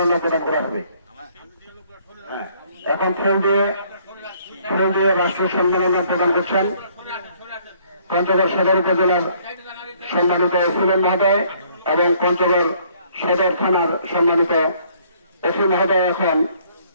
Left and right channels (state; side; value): inverted; both; correlation -0.62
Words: প্রদান করা হবে। এখন ফুল দিয়ে রাষ্ট্রীয় সম্মাননা প্রদান করছেন পঞ্চগড় সদর উপজেলার সম্মানিত এসিলেন মহোদয় এবং পঞ্চগড় সদর থানার সম্মানিত এসি মহোদয় এখন